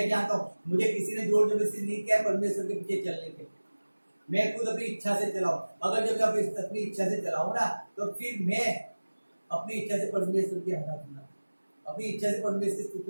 जानता हूँ, मुझे किसी ने जोर जबरदस्ती नहीं किया परमेश्वर के पीछे चलने के। मैं खुद अपनी इच्छा से चलाऊं। अगर जब मैं अपनी इच्छा से चलाऊं ना, तो फिर मैं अपनी इच्छा से परमेश्वर की आराधना, अपनी इच्छा से परमेश्वर की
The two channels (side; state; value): both; inverted; correlation -1.00